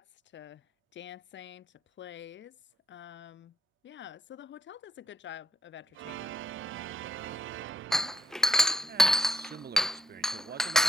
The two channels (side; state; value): both; normal; correlation 0.76